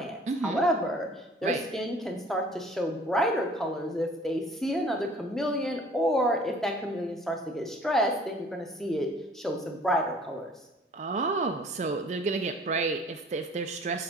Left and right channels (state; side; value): normal; both; correlation 0.51